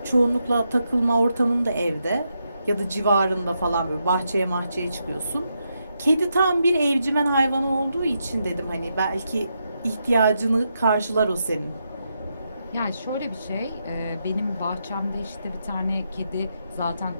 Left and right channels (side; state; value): both; inverted; correlation -0.83